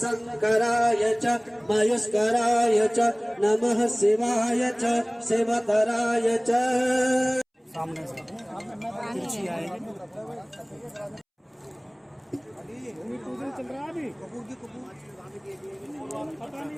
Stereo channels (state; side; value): identical; both; correlation 1.00